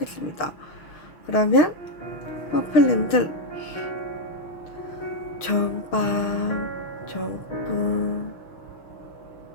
그러면 퍼플님들 좋은 밤, 좋은 꿈,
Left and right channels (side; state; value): right; late; 6.5 ms